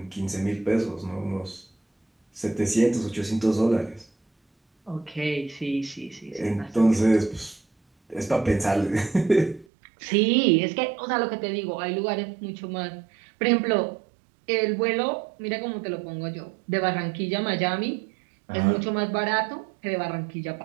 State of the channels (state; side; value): drops out; left; at 9.7 s